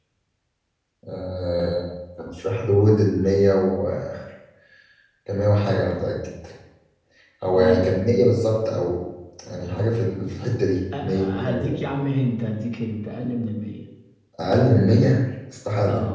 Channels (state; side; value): identical; both; correlation 1.00